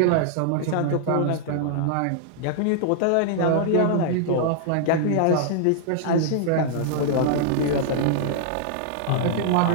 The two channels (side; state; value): both; different; correlation -0.01